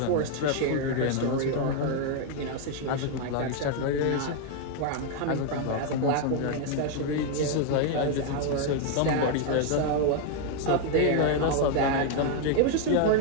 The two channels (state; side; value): different; both; correlation 0.01